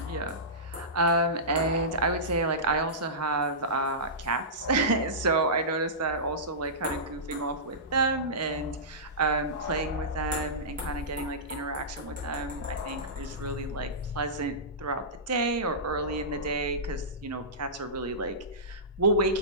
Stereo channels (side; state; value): both; normal; correlation -0.19